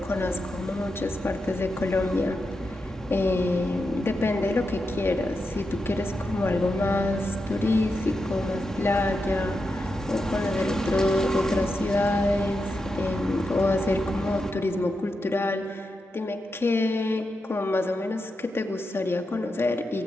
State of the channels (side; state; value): both; normal; correlation 0.87